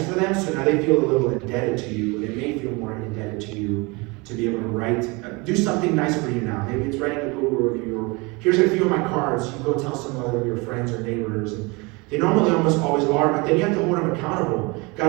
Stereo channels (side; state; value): left; quieter; 26.8 dB